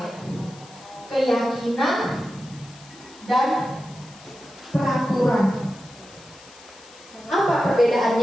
Keyakinan dan peraturan. Apa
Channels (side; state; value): left; noise; hiss, 22 dB below the sound